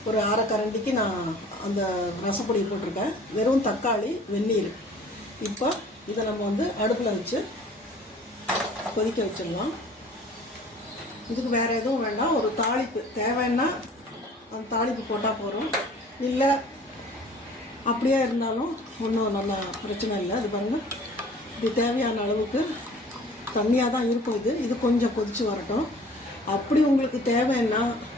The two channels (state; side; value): normal; both; correlation 0.49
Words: ஒரு அரை கரண்டிக்கு நான் அந்த ரசப்பொடி போட்டிருக்கேன். வெறும் தக்காளி வெந்நீர். இப்போ இதை நம்ம வந்து அடுப்பில் வச்சு கொதிக்க வச்சிடலாம். இதுக்கு வேறு எதுவும் வேண்டாம். ஒரு தாளிப்பு தேவைன்னா அந்த தாளிப்பு போட்டால் போகிறோம். இல்லை அப்படியே இருந்தாலும் ஒன்றும் நல்லா பிரச்சனை இல்லை. அது பாருங்கள், இது தேவையான அளவுக்கு தண்ணியாக தான் இருக்கும். இது கொஞ்சம் கொதித்து வரட்டும். அப்படி உங்களுக்கு தேவைன்னா